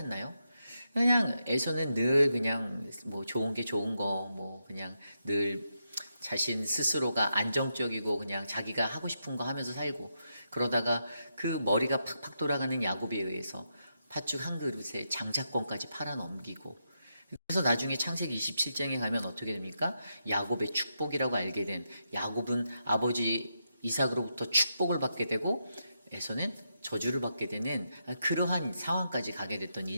그냥 에서는 늘 그냥 뭐 좋은 게 좋은 거, 뭐 그냥 늘 자신 스스로가 안정적이고 그냥 자기가 하고 싶은 거 하면서 살고, 그러다가 그 머리가 팍팍 돌아가는 야곱에 의해서 팥죽 한 그릇에 장자권까지 팔아넘기고, 그래서 나중에 창세기 27장에 가면 어떻게 됩니까? 야곱의 축복이라고 알게 된, 야곱은 아버지 이삭으로부터 축복을 받게 되고 에서는 저주를 받게 되는 그러한 상황까지 가게 됐던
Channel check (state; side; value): inverted; both; correlation -0.84